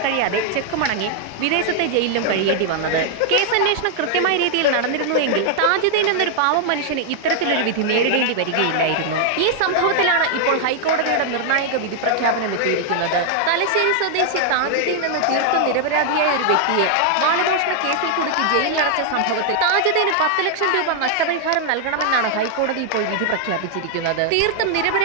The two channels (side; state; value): both; different; correlation 0.00